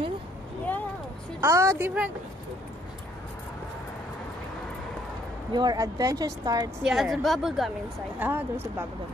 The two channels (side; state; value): both; normal; correlation 0.66